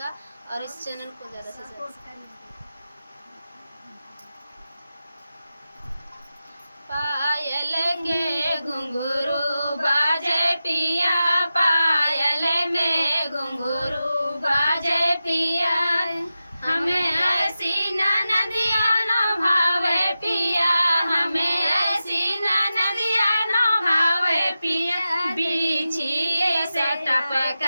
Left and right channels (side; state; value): both; inverted; correlation -0.92